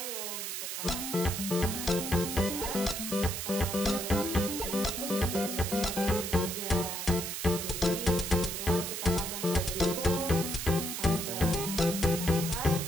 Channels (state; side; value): noise; right; hiss, 4 dB below the sound